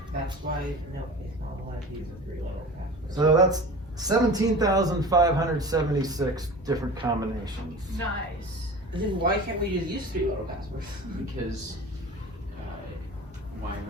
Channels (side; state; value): both; normal; correlation 0.36